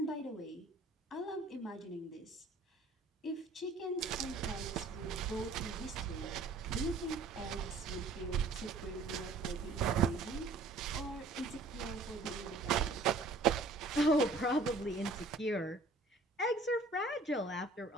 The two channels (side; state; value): left; quieter; 3.4 dB